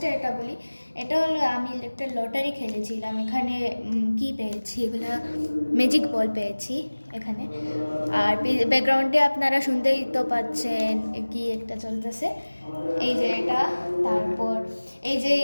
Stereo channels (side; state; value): both; inverted; correlation -1.00